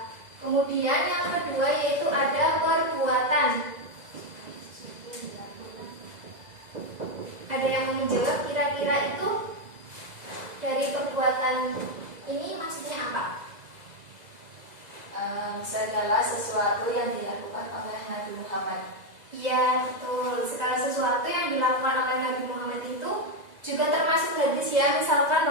Kemudian yang kedua yaitu ada perbuatan. Ada yang mau menjawab kira-kira itu dari perbuatan ini maksudnya apa? Segala sesuatu yang dilakukan oleh Nabi Muhammad. Iya betul. Segala sesuatu yang dilakukan oleh Nabi Muhammad itu juga termasuk hadis ya. Misalkan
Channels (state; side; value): late; left; 2.0 ms